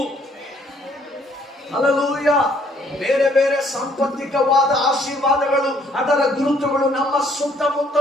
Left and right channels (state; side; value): normal; both; correlation 0.64